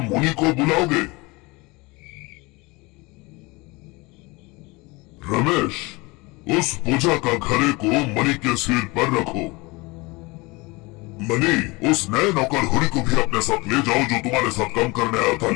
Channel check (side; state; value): right; quieter; 24.6 dB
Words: मुनि को बुलाओगे? रमेश, उस पूजा का घड़े को मणि के सिर पर रखो। मणि, उस नए नौकर हुरी को भी अपने साथ ले जाओ जो तुम्हारे साथ काम करने आया था,